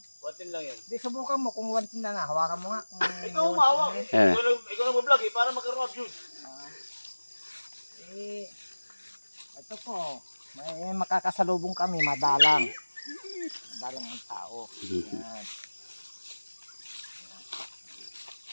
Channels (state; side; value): inverted; both; correlation -1.00